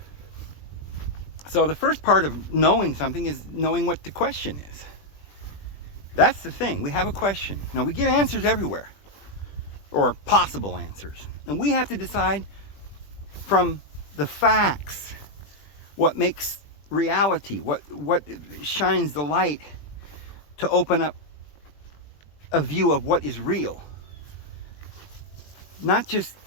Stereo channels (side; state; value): right; late; 20 ms